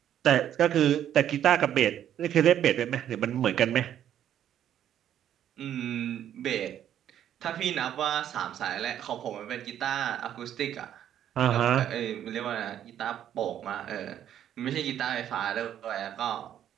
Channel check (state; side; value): quieter; left; 10.5 dB